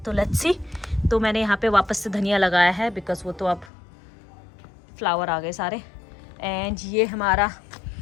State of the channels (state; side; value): drops out; right; at 3.7 s